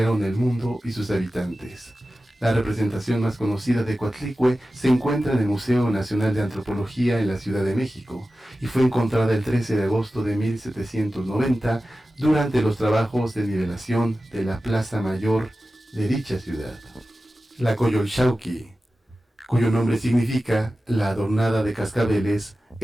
el mundo y sus habitantes. La representación más conocida de Coatlicue se encuentra en el Museo Nacional de Antropología en la Ciudad de México y fue encontrada el 13 de agosto de 1790 durante los trabajos de nivelación de la Plaza Mayor de dicha ciudad. La Coyolxauhqui, cuyo nombre significa la adornada de cascabeles,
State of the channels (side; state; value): both; normal; correlation 0.95